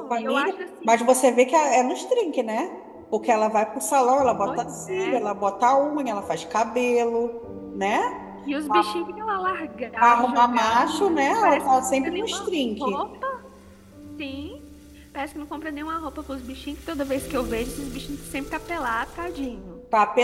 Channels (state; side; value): identical; both; correlation 1.00